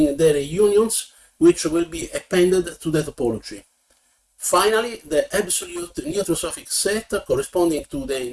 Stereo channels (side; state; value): both; identical; correlation 1.00